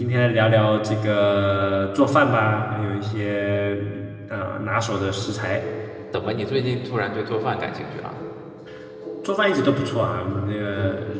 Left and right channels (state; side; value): identical; both; correlation 1.00